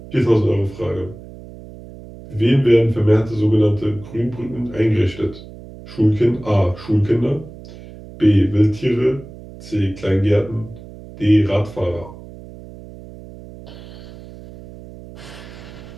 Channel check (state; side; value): noise; right; hum, 17 dB below the sound